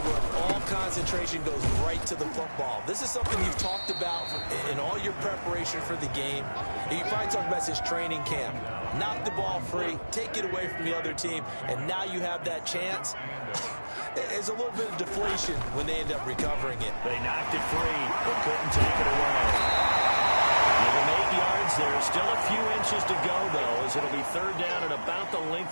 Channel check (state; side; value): inverted; both; correlation -1.00